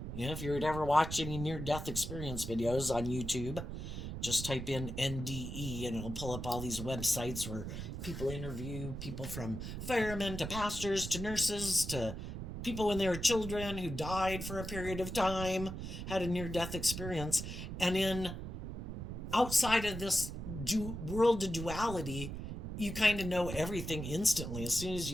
If you're ever watching any near-death experience videos on YouTube, just type in NDE and it'll pull up all these websites where people interview people from firemen to pastors to nurses to people when they were children who died for a period of time, had a near-death experience. And outside of this world of duality, you kind of know everything instantly. As soon as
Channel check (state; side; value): noise; right; rumble, 6 dB below the sound